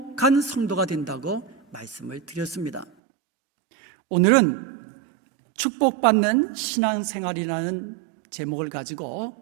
성도가 된다고 말씀을 드렸습니다. 오늘은 축복받는 신앙생활이라는 제목을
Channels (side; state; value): left; drops out; at 2.9 s